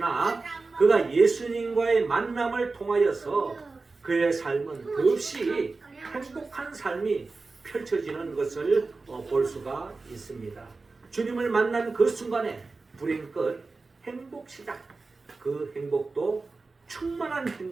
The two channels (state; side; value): quieter; left; 3.8 dB